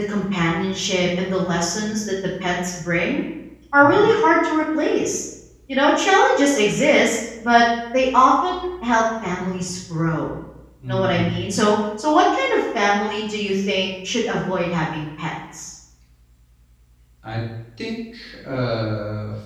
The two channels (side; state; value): both; identical; correlation 1.00